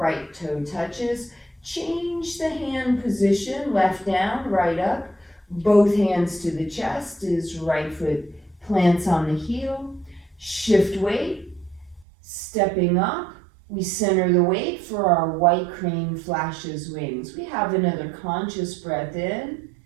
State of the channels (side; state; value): left; drops out; at 12.1 s